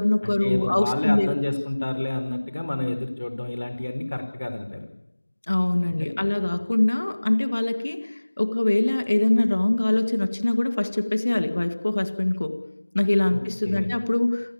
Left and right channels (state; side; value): inverted; both; correlation -1.00